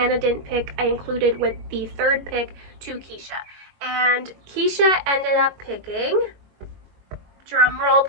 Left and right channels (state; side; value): late; left; 21 ms